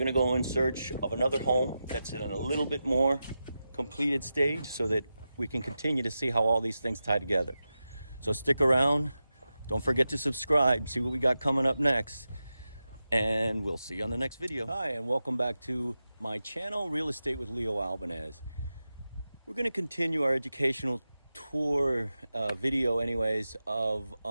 to go in search of another home that's in a little bit more completed stage, so that we can continue to see how all these things tie together. So stick around. Don't forget to subscribe, see what we got coming up next, and we'll see you on the next video. Hi, and welcome back to my channel, Real Estate with Leo Albanes. We're going to continue our educational tour video anyways of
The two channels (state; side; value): inverted; both; correlation -0.92